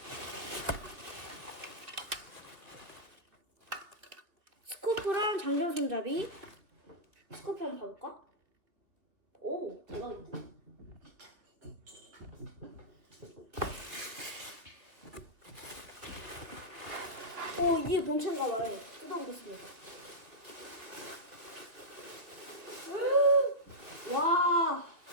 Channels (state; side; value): late; left; 2.9 ms